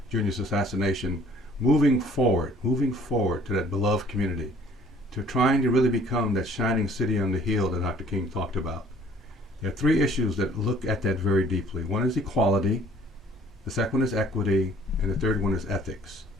Jr.'s assassination, moving forward to that beloved community, to trying to really become that shining city on the hill that Dr. King talked about. There are three issues that look at that very deeply. One is equality, the second one is equity, and the third one is ethics.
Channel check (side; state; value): both; normal; correlation 0.56